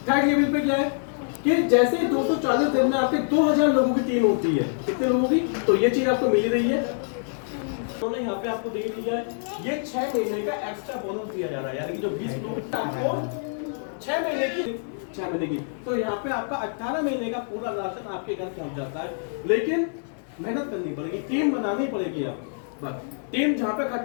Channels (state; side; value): silent; right; digital silence